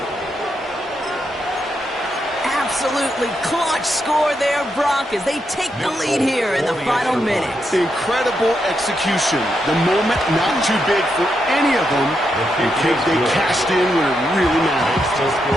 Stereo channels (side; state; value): both; normal; correlation 0.82